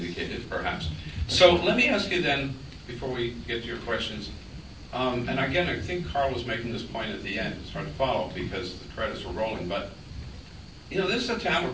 perhaps. So let me ask you then, before we get to your questions, and again, I think Carl was making this point at the end. It's hard to follow because the credits were rolling, but you know, this is a town where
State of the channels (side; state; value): both; identical; correlation 1.00